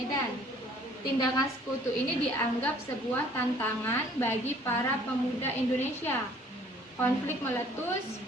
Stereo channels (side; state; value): both; normal; correlation 0.56